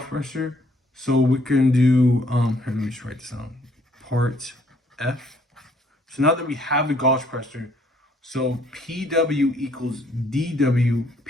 pressure, so we can do, here, let me just write this down, part F. So now that we have the gauge pressure, so PW equals DW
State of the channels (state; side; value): normal; both; correlation 0.65